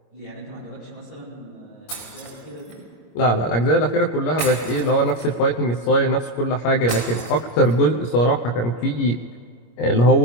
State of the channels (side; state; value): right; late; 25 ms